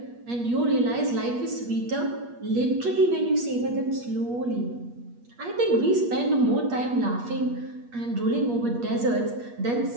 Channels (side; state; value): left; late; 8.4 ms